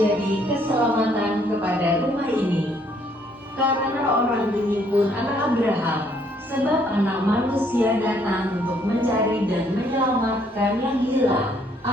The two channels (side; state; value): both; normal; correlation 0.66